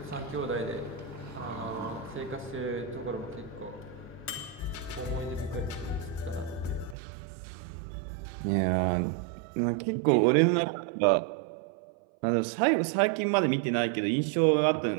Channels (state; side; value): drops out; left; at 7.0 s